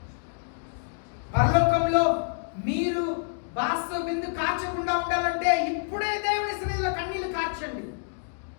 పరలోకంలో మీరు బాస్తో బిందు కార్చకుండా ఉండాలంటే ఇప్పుడే దేవుని సన్నిధిలో కన్నీళ్లు కార్చండి.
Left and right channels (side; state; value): right; silent; digital silence